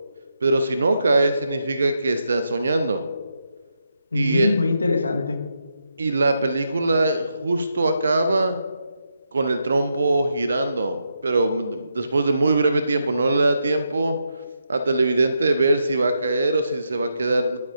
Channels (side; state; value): both; inverted; correlation -0.82